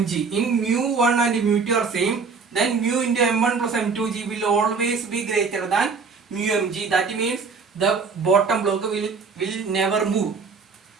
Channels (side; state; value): left; quieter; 5.0 dB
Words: in mu1 and mu2 are same, then mu into m1 plus m2g will always be greater than mu mg. That means the bottom block will never move.